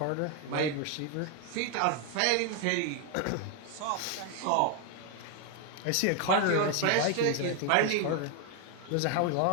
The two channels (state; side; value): different; both; correlation 0.01